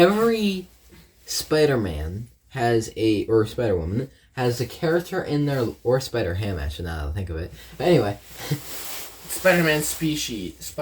Spider-Man has or Spider-Woman has a character in their, or Spider-Ham actually, now that I think of it. But anyway. Spider-Man species.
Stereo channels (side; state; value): both; identical; correlation 1.00